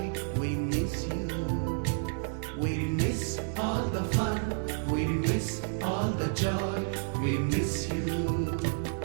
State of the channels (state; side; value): silent; left; 58 dB below the other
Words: we miss you. We miss all the fun, we miss all the joy, we miss you.